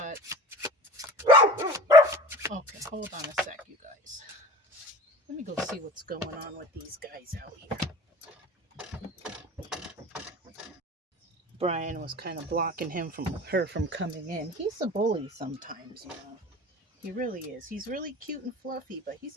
okay, hold on a sec, you guys. Let me go see what's going on with these guys out here. Brian was kind of blocking her from coming in. He's a bully sometimes, He really is. He's really cute and fluffy, but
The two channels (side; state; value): both; normal; correlation 0.39